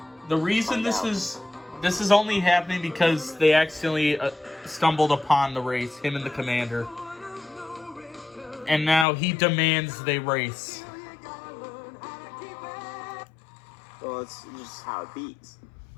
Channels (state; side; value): drops out; right; at 9.1 s